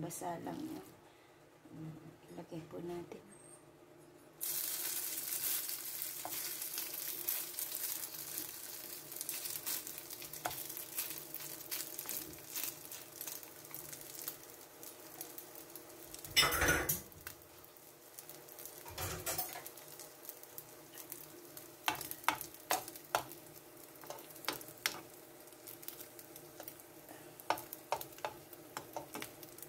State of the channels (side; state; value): both; identical; correlation 1.00